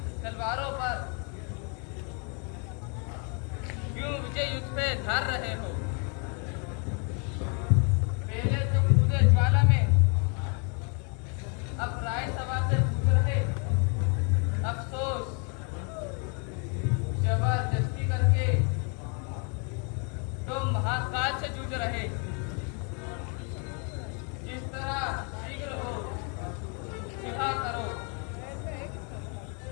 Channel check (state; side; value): quieter; right; 36.7 dB